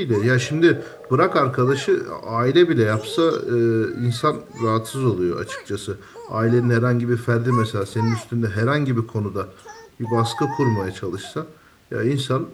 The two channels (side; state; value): both; identical; correlation 1.00